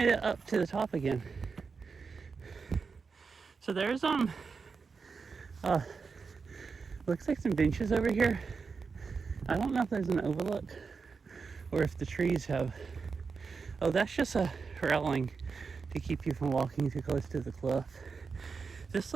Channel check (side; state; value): left; quieter; 5.0 dB